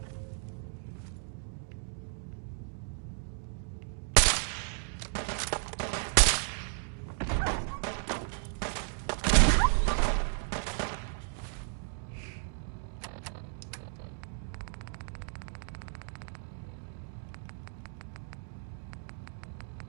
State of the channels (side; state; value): left; silent; 55 dB below the other